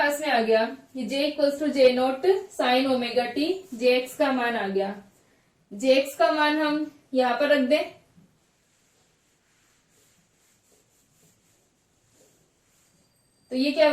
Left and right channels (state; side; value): identical; both; correlation 1.00